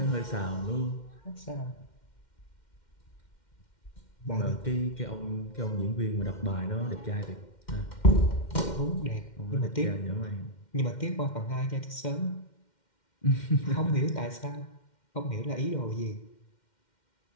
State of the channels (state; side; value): late; right; 2.1 ms